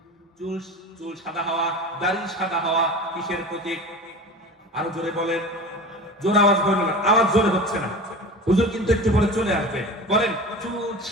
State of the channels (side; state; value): both; normal; correlation 0.34